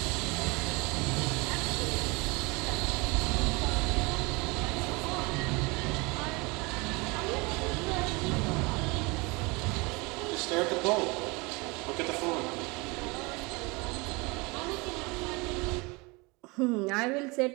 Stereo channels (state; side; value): quieter; left; 26.4 dB